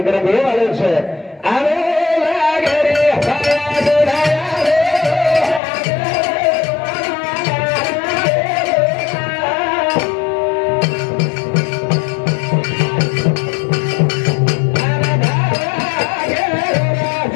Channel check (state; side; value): drops out; right; at 5.6 s